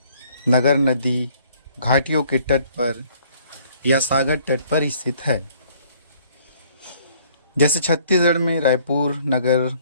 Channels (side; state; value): both; inverted; correlation -0.61